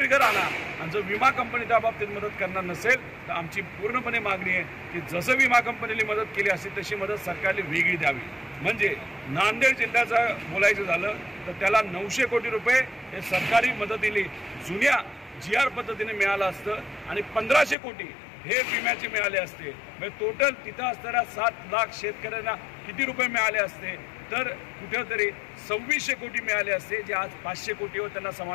आणा। आणि जर विमा कंपनी त्या बाबतीत मदत करणार नसेल तर आमची पूर्णपणे मागणी आहे की जसं विमा कंपनीने मदत केली असेल तशी मदत सरकारने वेगळी द्यावी। म्हणजे नांदेड जिल्ह्याचं बोलायचं झालं तर त्याला 900 कोटी रुपये हे सरकारी मदतीने जुन्या GR पद्धतीने मिळालं असतं आणि 1500 कोटी हे विम्याचे मिळाले असते। म्हणजे टोटल तिथं असणाऱ्या 7 लाख शेतकऱ्यांना किती रुपये मिळाले असते? तर कुठेतरी 2600 कोटी मिळाले असते, जे आज 500 कोटीवर त्यांना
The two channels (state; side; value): drops out; right; at 17.8 s